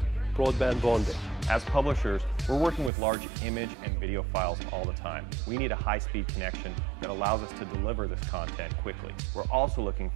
broadband bonding. As publishers, we're working with large image and video files all the time. We need a high-speed connection that allows us to deliver this content quickly. We're also looking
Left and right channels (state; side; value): drops out; left; at 2.9 s